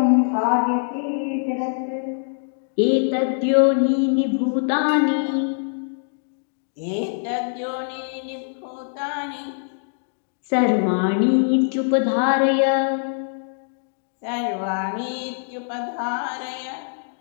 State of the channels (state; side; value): silent; right; digital silence